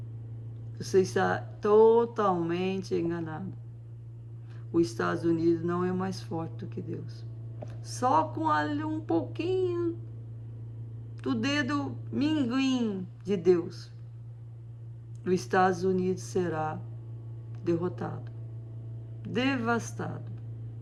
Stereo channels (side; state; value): both; identical; correlation 1.00